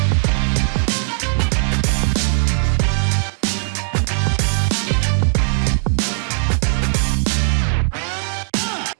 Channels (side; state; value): left; silent; digital silence